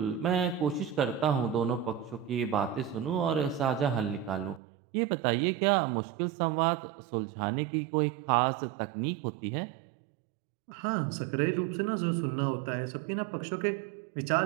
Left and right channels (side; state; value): left; drops out; at 4.6 s